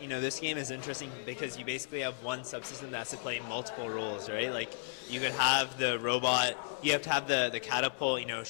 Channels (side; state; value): right; silent; 55 dB below the other